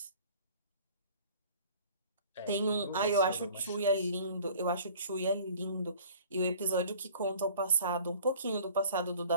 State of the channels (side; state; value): both; inverted; correlation -0.49